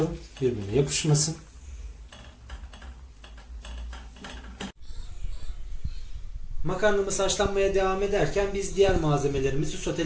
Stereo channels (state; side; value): identical; both; correlation 1.00